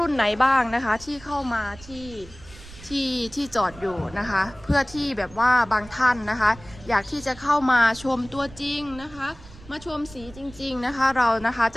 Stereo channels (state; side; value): noise; right; rumble, 19 dB below the sound